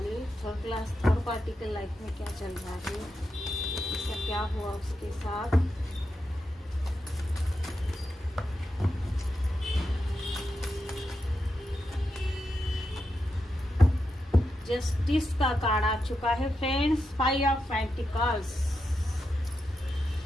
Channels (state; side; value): normal; both; correlation 0.87